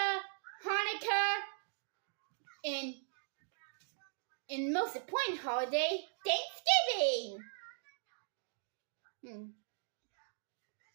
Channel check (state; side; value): silent; left; digital silence